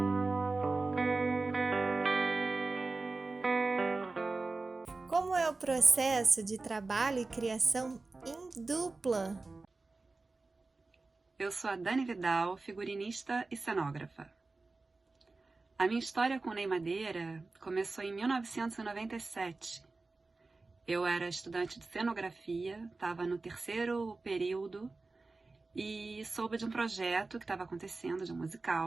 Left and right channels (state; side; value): quieter; left; 3.6 dB